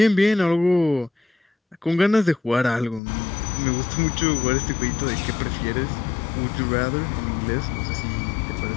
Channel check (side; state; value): right; drops out; at 3.0 s